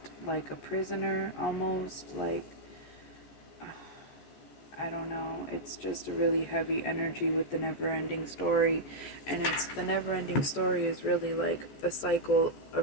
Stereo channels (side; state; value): right; late; 14 ms